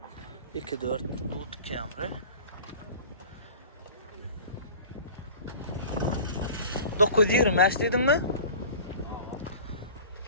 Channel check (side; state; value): both; inverted; correlation -0.41